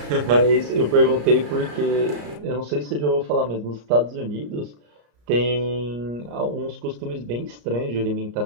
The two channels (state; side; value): late; left; 34 ms